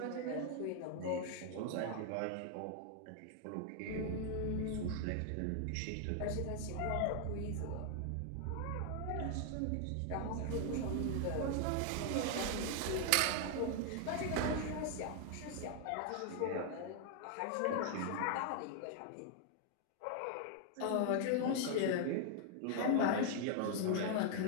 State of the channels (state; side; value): different; both; correlation 0.00